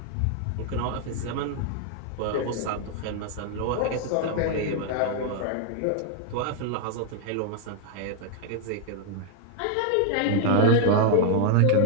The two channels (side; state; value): both; different; correlation 0.00